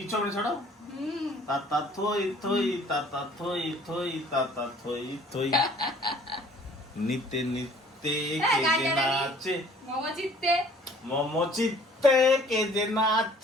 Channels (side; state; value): both; normal; correlation 0.54